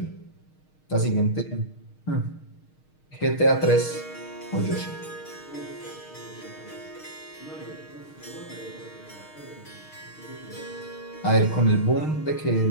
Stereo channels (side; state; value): right; late; 6.5 ms